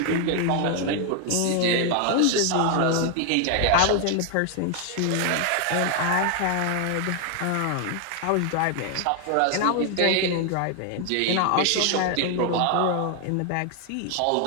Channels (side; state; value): both; different; correlation 0.00